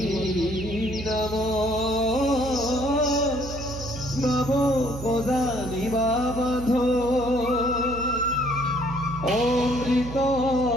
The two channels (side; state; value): right; noise; hum, 10 dB below the sound